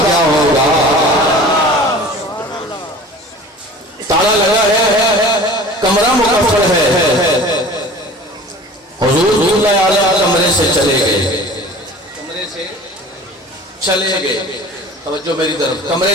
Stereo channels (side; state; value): both; normal; correlation 0.42